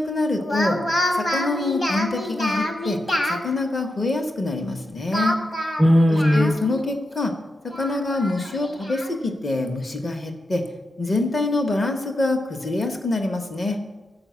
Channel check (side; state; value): both; normal; correlation 0.87